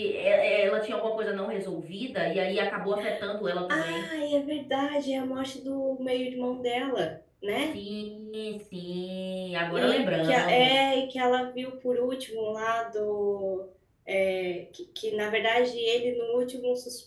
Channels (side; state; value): both; identical; correlation 1.00